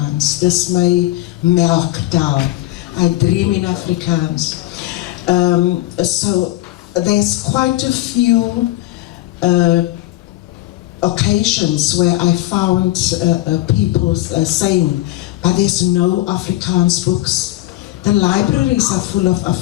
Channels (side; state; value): right; quieter; 16.7 dB